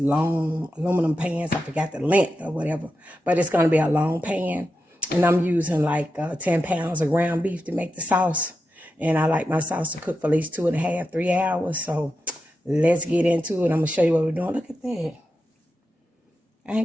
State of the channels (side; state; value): both; normal; correlation 0.89